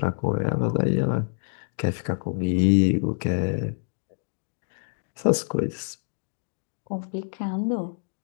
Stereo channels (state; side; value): silent; right; digital silence